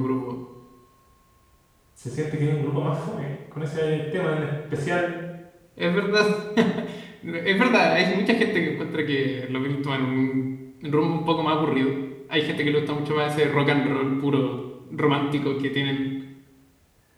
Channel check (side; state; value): both; identical; correlation 1.00